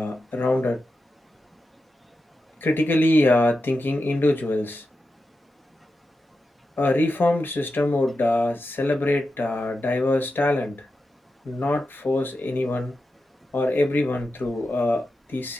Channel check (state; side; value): normal; both; correlation 0.89